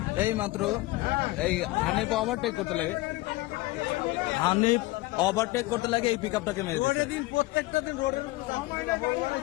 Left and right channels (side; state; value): right; quieter; 20.1 dB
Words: এই মাত্র এই হানিফ ওভারটেক করতে লাগে, হানিফ ওভারটেক করতে লাগে এই পিকআপটাকে মেরে দিয়েছে।